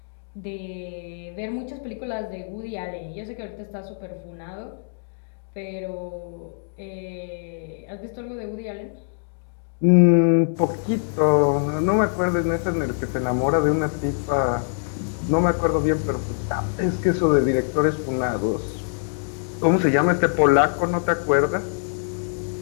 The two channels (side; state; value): right; silent; digital silence